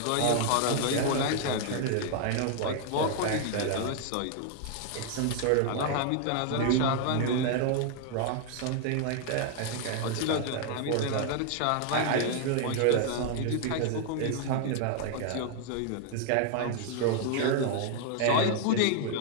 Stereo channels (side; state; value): both; different; correlation 0.00